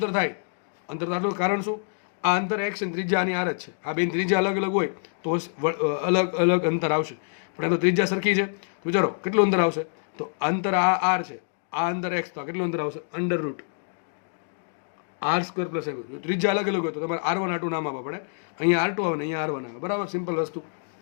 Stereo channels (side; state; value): right; silent; digital silence